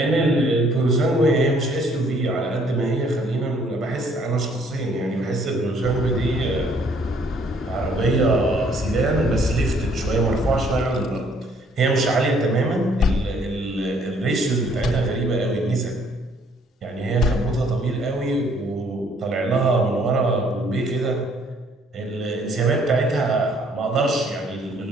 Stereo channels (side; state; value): both; normal; correlation 0.63